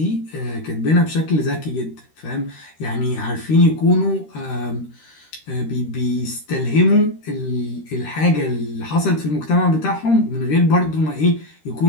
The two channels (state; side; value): late; right; 13 ms